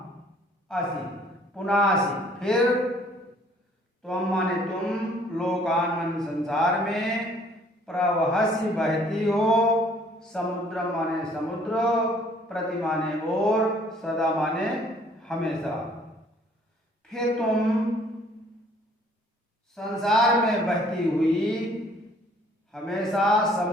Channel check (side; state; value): both; normal; correlation 0.59